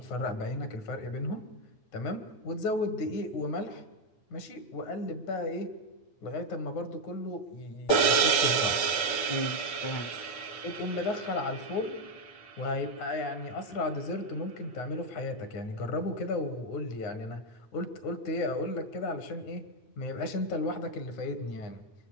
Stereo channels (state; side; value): late; right; 8.6 ms